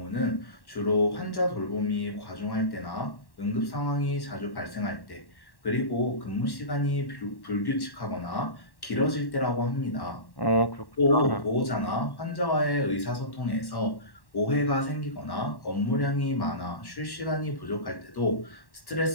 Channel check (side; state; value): right; late; 1.1 ms